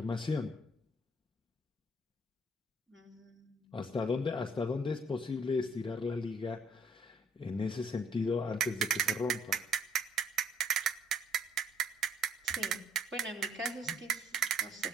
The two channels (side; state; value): both; normal; correlation 0.64